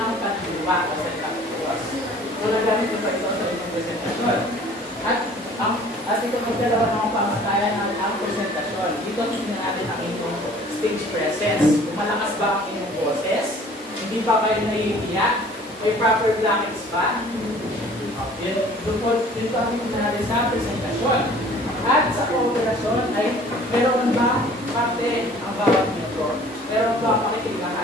pagdiwa o sentaktuas. Kung nagamit ba ito sa itong presentasyon. At ito magdalawa ng pamatayan ang presentasyon. Dito tingnan natin ang inyong stage presence. Kung malakas ba ang inyong boses, hindi ba kayo naiiyak, may proper blankets ba? Dito ang tingnan natin sa presentasyon. At sa kooperasyon ay meron ba parte ang bawat miyembro? Meron ba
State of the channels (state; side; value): normal; both; correlation 0.51